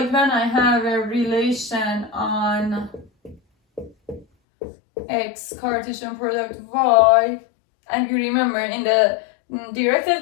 when I have a relation on X Cartesian product Y, and you remember in the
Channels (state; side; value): drops out; right; at 4.2 s